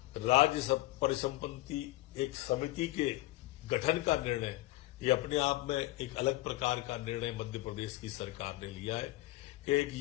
राज्य परिसंपत्ति एक समिति के गठन का निर्णय, ये अपने आप में एक अलग प्रकार का निर्णय मध्य प्रदेश की सरकार ने लिया है कि एक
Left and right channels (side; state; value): right; quieter; 18.6 dB